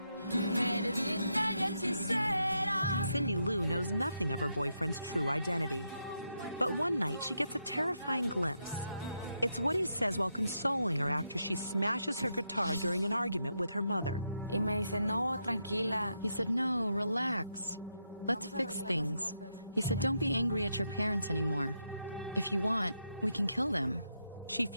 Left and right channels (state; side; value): inverted; both; correlation -0.83